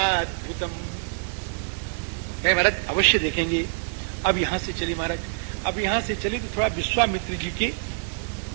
महाराज अवश्य देखेंगे। अब यहां से चले महाराज, अब यहां से चले तो थोड़ा विश्वामित्र जी के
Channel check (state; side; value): silent; left; digital silence